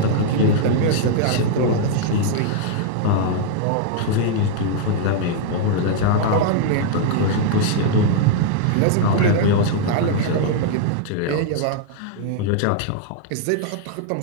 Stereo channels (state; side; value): different; both; correlation -0.01